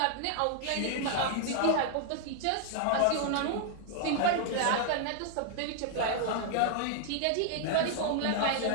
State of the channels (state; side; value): different; both; correlation -0.01